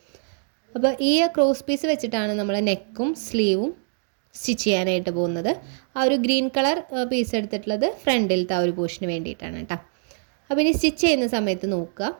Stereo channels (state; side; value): silent; left; 63 dB below the other